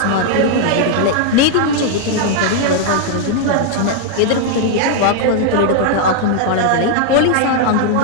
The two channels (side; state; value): both; different; correlation 0.00